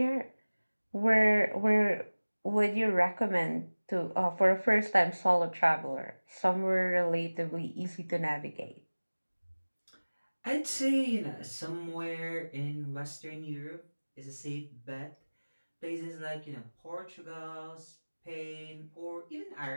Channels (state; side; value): inverted; both; correlation -1.00